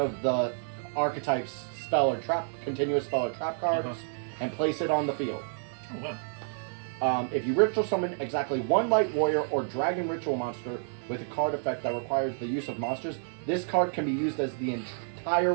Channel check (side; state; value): left; silent; digital silence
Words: the archetype's spell or trap, continuous spell or trap cards, and place it on the field. Oh, wow. If you ritual summon exactly one light warrior or dragon ritual monster with a card effect that requires the use of monsters, this card can be used as the entire